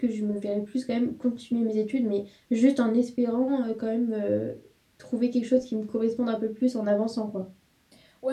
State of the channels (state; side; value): identical; both; correlation 1.00